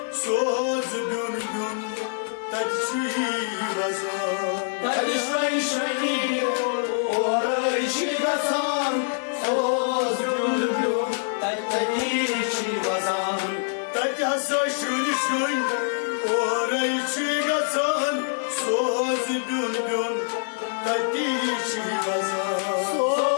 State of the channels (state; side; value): silent; right; digital silence